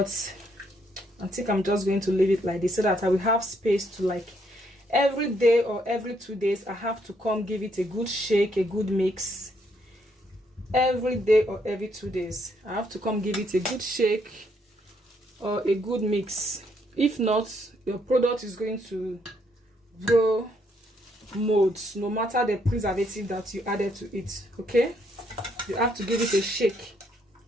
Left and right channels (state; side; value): normal; both; correlation 0.72